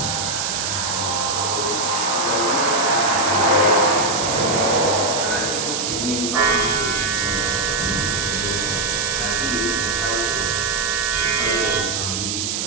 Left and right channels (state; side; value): noise; right; hiss, 1 dB below the sound